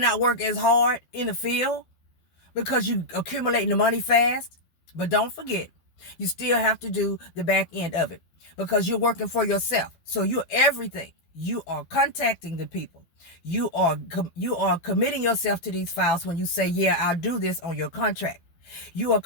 work as hard in the field because you accumulating the money fast. But don't forget, you still have to do the back end of it because you're working for yourself. So you're everything. You are contacting the people. You are committing yourself to these files when you say, yeah, I'll do this on your contract. You are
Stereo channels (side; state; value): right; late; 12 ms